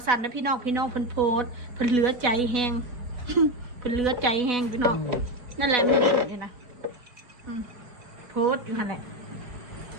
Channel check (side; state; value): left; late; 4.1 ms